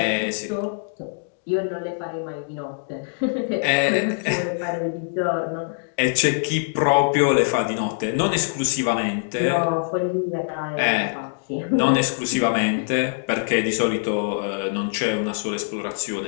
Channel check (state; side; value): silent; right; digital silence